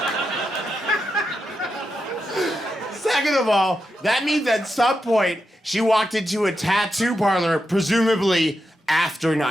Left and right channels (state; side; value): normal; both; correlation 0.87